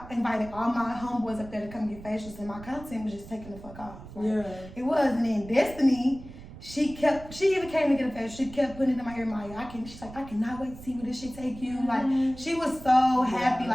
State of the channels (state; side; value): noise; right; rumble, 16 dB below the sound